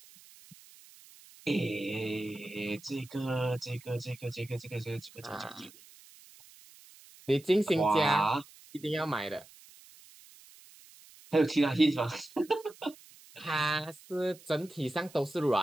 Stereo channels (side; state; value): right; noise; hiss, 23 dB below the sound